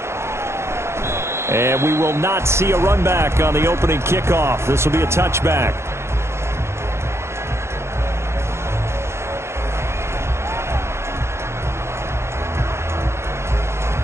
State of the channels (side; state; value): left; late; 0.13 ms